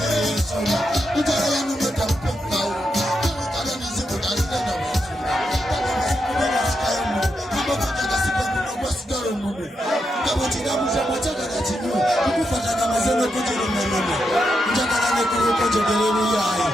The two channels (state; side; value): normal; both; correlation 0.84